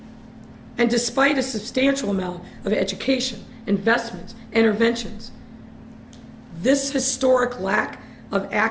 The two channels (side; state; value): both; identical; correlation 1.00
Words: And despite a substantial amount of education, investments, interventions, this historic lack of